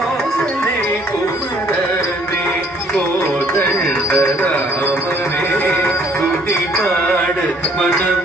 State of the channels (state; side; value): normal; both; correlation 0.62